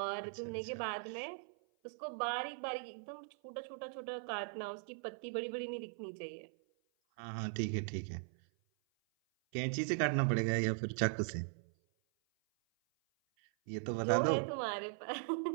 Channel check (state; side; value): silent; left; 51 dB below the other